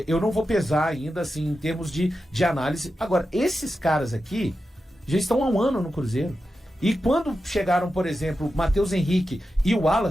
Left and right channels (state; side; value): normal; both; correlation 0.91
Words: eu não vou pesar ainda, assim, em termos de análise. Agora, esses caras aqui já estão há um ano no Cruzeiro. E quando chegaram, por exemplo, Matheus Henrique e o